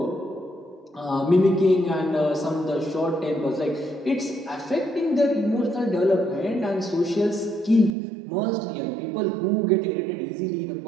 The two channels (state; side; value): drops out; left; at 8.0 s